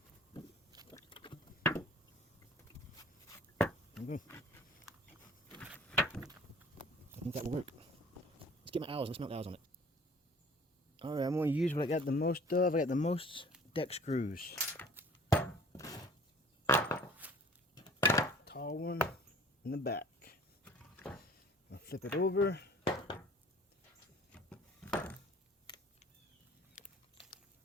Okay. I think that will work. Let's get my owls. Let's mount the owls on it. Alright, I'm going to use what I got the most of. I got the most deck screws. Tall one in the back. I'll flip it over.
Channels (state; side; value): normal; both; correlation 0.50